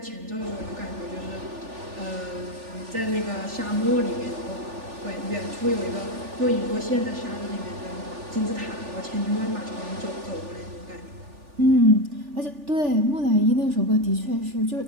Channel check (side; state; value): left; late; 3.4 ms